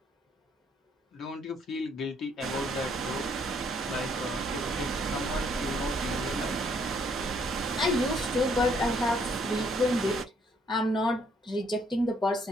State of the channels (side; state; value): both; normal; correlation 0.67